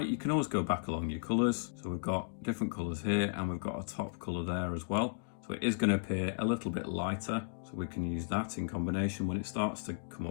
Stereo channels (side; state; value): right; silent; digital silence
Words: you can always go back along your colours. So we've got different colours here, and we've got a top colour there as well. So it is going to appear a little bit lighter. So we can use that in combination when it starts to come